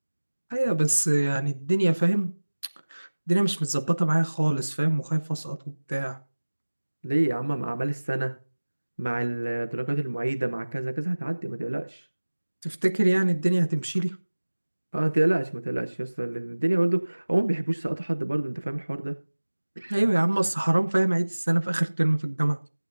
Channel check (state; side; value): inverted; both; correlation -1.00